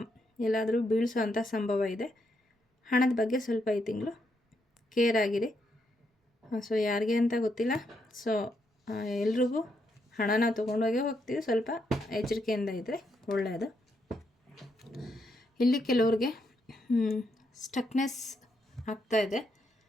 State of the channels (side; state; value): both; normal; correlation 0.79